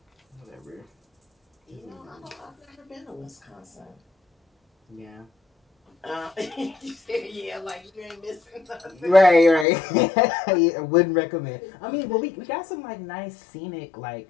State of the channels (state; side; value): drops out; right; at 9.7 s